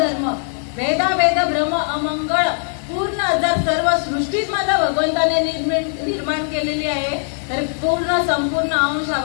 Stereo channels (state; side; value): silent; right; digital silence